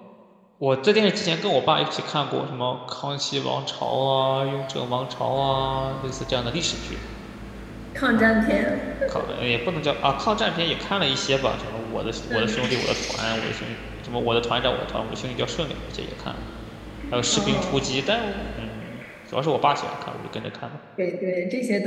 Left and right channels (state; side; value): identical; both; correlation 1.00